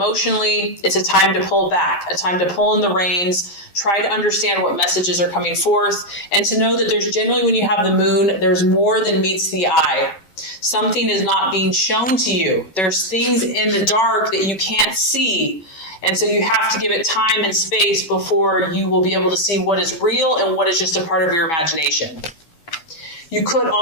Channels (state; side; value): late; right; 11 ms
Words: it's a time to pull back, a time to pull in the reins, try to understand what messages are coming forth, and to know that there's generally, when you have the moon, there's more than meets the eye. Something is not being shown to you. There's things in the dark that you can't see. And so you have to give it time and space before you will be able to see what is real and what is just a part of your imagination. You could